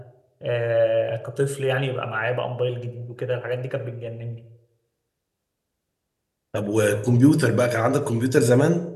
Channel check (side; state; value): both; identical; correlation 1.00